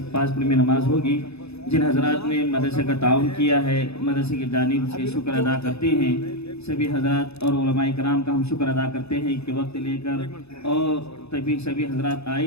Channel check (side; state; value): right; late; 0.79 ms